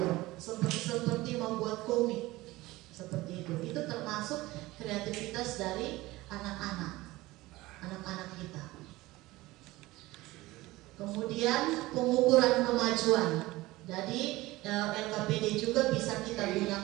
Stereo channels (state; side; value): quieter; left; 19.2 dB